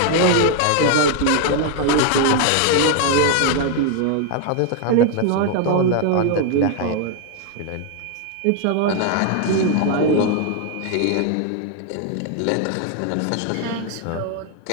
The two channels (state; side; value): different; both; correlation 0.01